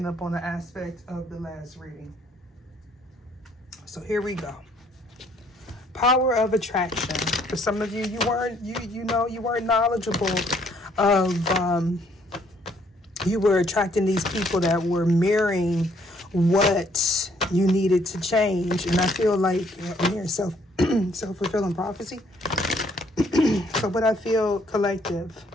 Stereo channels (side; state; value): both; normal; correlation 0.65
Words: up on the aspect of the last reading. So here we go. Power of attraction. For some of you, you weren't knowledgeable of, you were attracting these people that were mirroring what you needed to change. And I feel like, I'm hearing self-fulfilling prophecy. So what I feel, collective,